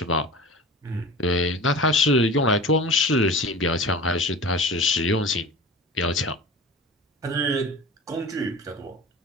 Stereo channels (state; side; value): normal; both; correlation 0.35